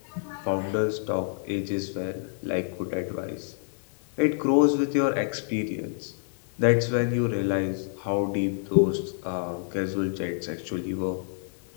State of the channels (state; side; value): silent; right; digital silence